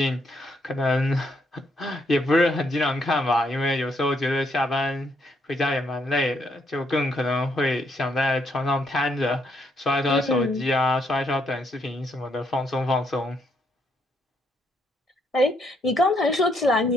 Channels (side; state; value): both; normal; correlation 0.73